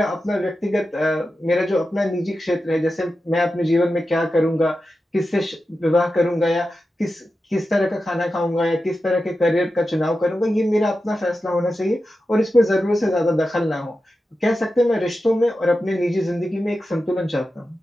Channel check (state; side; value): normal; both; correlation 0.91